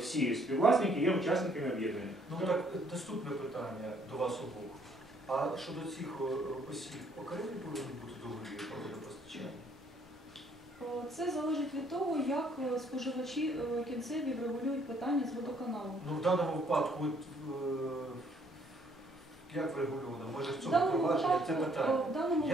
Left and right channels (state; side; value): normal; both; correlation 0.65